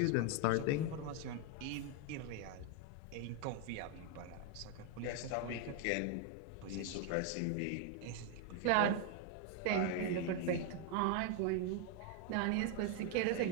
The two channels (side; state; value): both; different; correlation 0.00